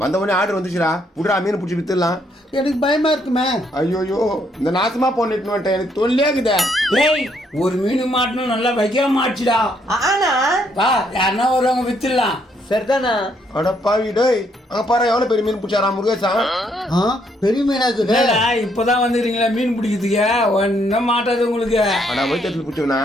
வந்தவனே ஆர்டர் வந்துச்சுடா, புடுறா மீன் பிடிச்சி வித்துடலாம். எனக்கு பயமா இருக்குமே. ஐயோயோ இந்த நாசமா போனிட்டு வந்துட்டேன், எனக்கு தொல்லையாக்குதே. டேய் ஒரு மீன் மாட்டணும், நல்லா வைக்க மாட்டுடா. ஆனா பா யாருன்னா வருவாங்க, வித்துடலாம். சரிதானா? அட பாவி டேய், அங்க பாரு எவ்வளவு பெரிய மீன் பிடிச்சாரா முருகேசா. பெரிய மீனாக்குது. இப்பதான் வந்துக்கிறீங்களா மீன் பிடிக்கிறதுக்கு? ஒன்னும் மாட்டாது உங்களுக்கு. ஆனா வயிற்றுல பிடிச்சவனா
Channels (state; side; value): normal; both; correlation 0.72